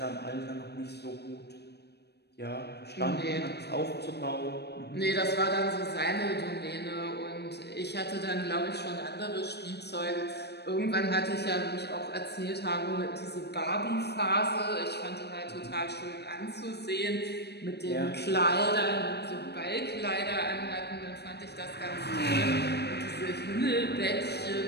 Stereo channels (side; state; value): right; late; 0.48 ms